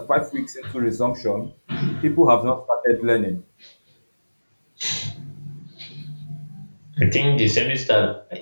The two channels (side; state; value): both; inverted; correlation -1.00